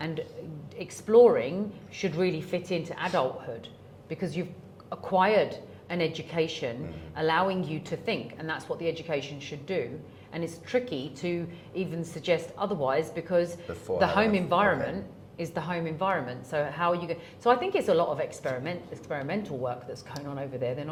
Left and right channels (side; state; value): both; identical; correlation 1.00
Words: exploring should really fit into adulthood because you've acquired an education allowing you to think, and that's what the education should do. And it's tricky to even suggest otherwise because the home environment is the home environment. So how are you going? So I think it's a lot of experimental work that's going on over there. They're